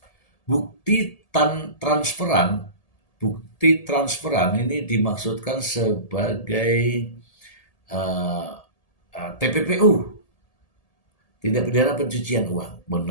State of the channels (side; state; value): right; late; 1.8 ms